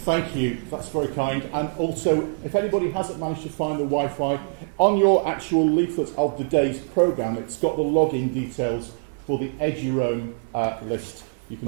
Thank you, that's very kind. And also, if anybody hasn't managed to find the Wi-Fi, on your actual leaflet of the day's programme, it's got the login details for the Eduroam list. You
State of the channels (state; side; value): silent; left; digital silence